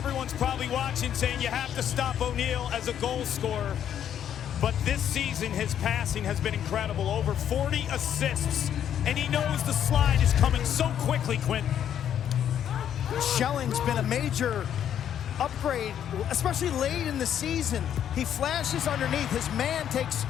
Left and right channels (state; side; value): quieter; right; 9.7 dB